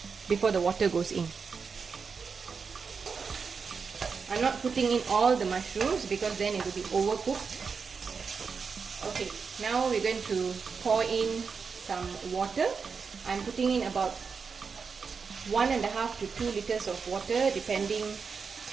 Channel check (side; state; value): left; quieter; 5.5 dB